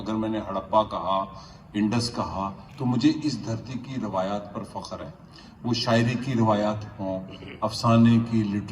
मैंने हड़प्पा कहा, इंडस कहा, तो मुझे इस धरती की रवायात पर फ़ख्र है। वो शायरी की रवायात हों, अफसाने की,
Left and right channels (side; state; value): both; identical; correlation 1.00